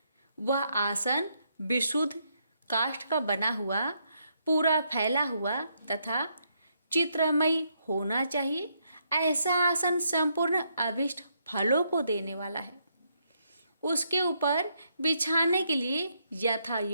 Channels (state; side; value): inverted; both; correlation -0.76